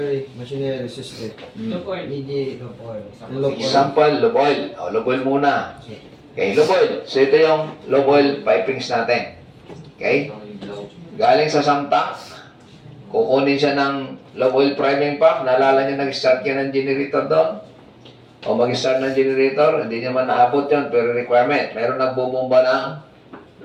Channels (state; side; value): identical; both; correlation 1.00